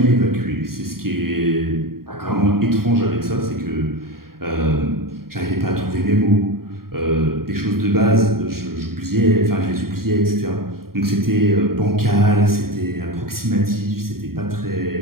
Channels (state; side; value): late; left; 0.93 ms